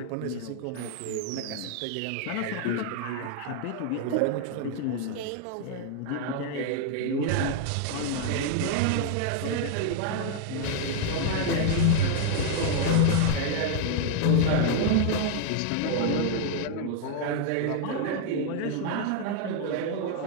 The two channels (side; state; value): both; different; correlation 0.00